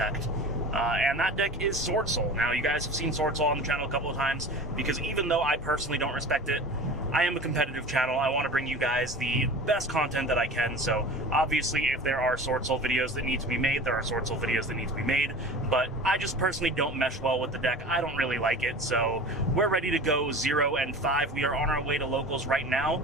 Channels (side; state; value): both; normal; correlation 0.36